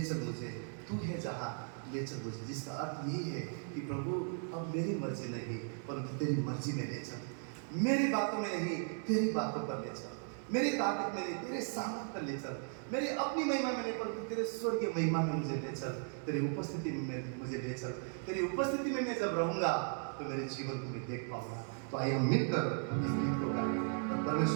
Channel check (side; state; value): left; silent; 53 dB below the other